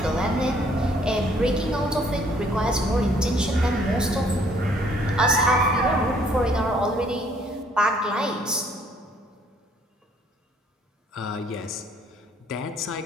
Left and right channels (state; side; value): normal; both; correlation 0.63